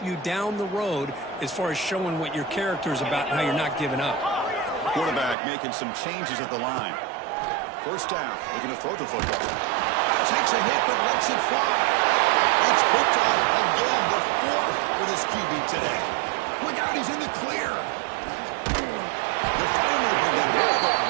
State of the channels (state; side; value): drops out; left; at 5.4 s